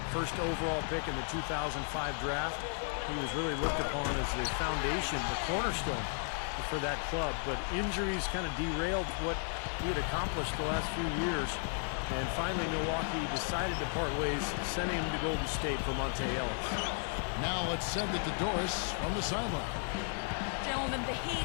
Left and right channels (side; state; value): right; silent; 55 dB below the other